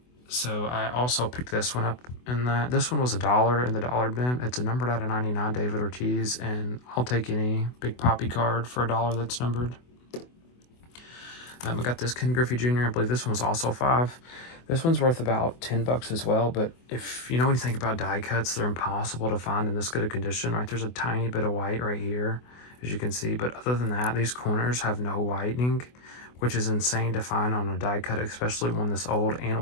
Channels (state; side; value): late; right; 24 ms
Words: So I also picked this one up, and this one was $1 in the dollar bin. It's a numbered out of 99 David Ortiz, and I'll take any Big Papi card for $1 that's numbered. I got this Ken Griffey Jr. I believe this one was also 5. This one's worth about $10 as well, but if you know anything about die cuts, they're impossible to find in this good a condition, right? There's a tiny bit of white right here, as you can see, but other than that, these corners have no whitening, which is insane to find on a die cut, especially one this old